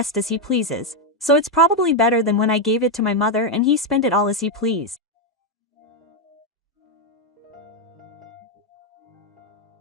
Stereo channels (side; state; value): both; normal; correlation 0.03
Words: as he pleases, so it's probably better than when I gave it to my mother and he spent it all as he pleased.